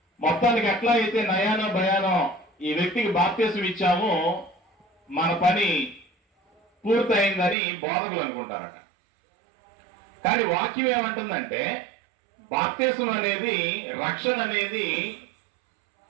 మొత్తానికి ఎట్లా అయితే నయానో భయానో ఈ వ్యక్తికి బాప్తిసం ఇచ్చాము, మన పని పూర్తయిందని బోధకులు అనుకుంటారట. కానీ వాక్యం ఏమంటుందంటే, బాప్తిసం అనేది, రక్షణ అనేది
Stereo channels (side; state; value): left; drops out; at 7.6 s